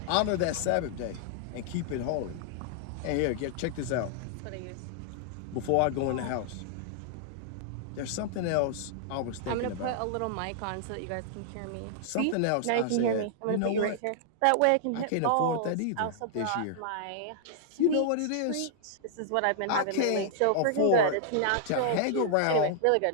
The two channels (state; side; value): different; both; correlation -0.01